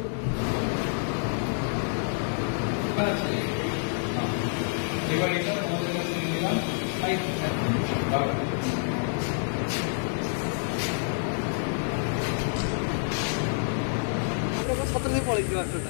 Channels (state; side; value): silent; right; 60 dB below the other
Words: এবার এটা আমাদের কাছে নিলাম। কত দিন পরে